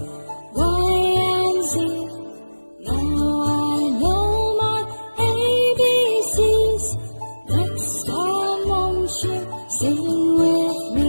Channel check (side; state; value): both; inverted; correlation -1.00